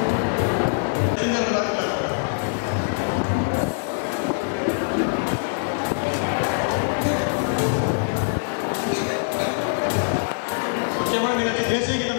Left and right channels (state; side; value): silent; right; 58 dB below the other